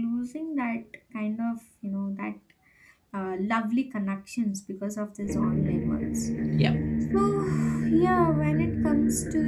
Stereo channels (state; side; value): identical; both; correlation 1.00